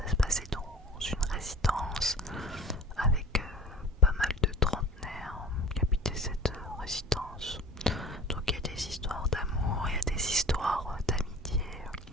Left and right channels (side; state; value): both; normal; correlation 0.42